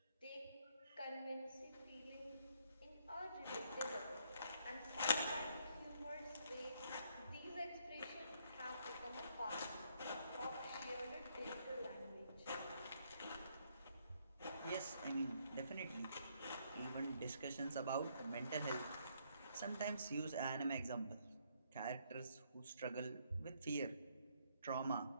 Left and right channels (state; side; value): inverted; both; correlation -0.71